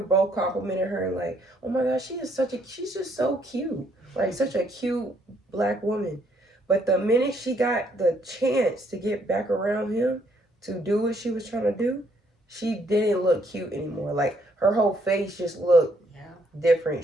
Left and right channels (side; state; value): both; normal; correlation 0.69